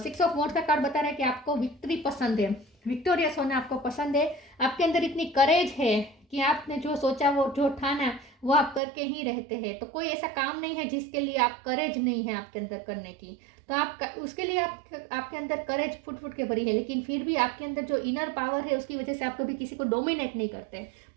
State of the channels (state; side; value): drops out; left; at 8.8 s